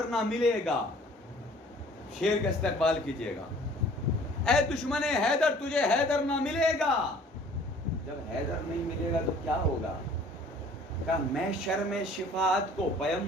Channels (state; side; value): normal; both; correlation 0.52